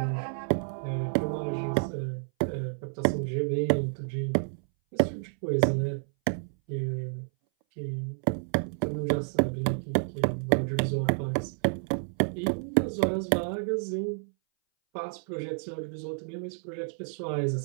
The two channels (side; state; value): left; silent; 58 dB below the other